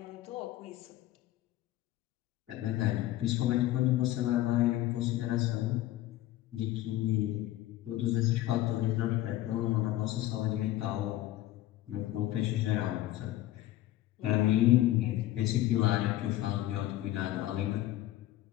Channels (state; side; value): quieter; right; 14.9 dB